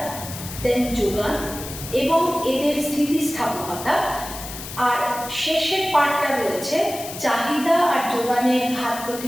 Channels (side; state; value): left; noise; hiss, 11 dB below the sound